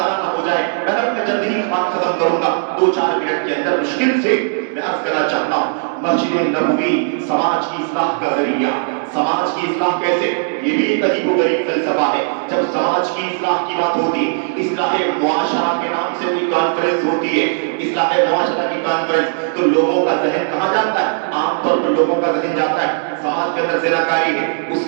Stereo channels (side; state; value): left; silent; 68 dB below the other